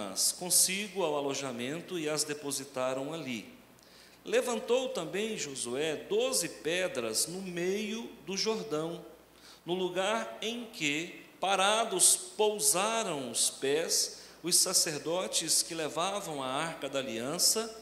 consigo ao alojamento e as depositaram ali. Levantou também Josué 12 pedras no meio do Jordão, no lugar em que, parados, pousaram os pés os sacerdotes que levavam a arca da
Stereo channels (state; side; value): identical; both; correlation 1.00